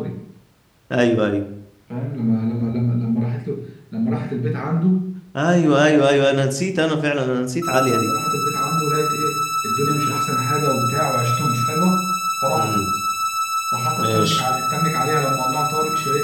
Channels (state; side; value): identical; both; correlation 1.00